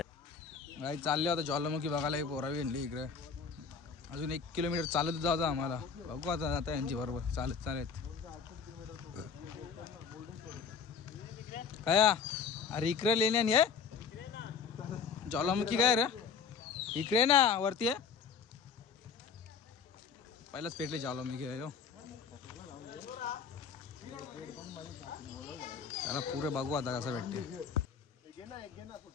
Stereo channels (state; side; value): quieter; right; 6.0 dB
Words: काही चालले होता ज्वालामुखी बघायला. ही पोरावी आणली इकडे. अजून 1 किलोमीटर चालत जायचं आम्हाला. बघू आता यांची बरोबर चालत चालत. काय अरे इकडे लेण्यानी आहे ज्वालामुखी. काय रे इकडे ना वरती आहे. पहिलाच पेटले ज्वालामुखी आहे. त्याला पुरे बघू आता कसं भेटते.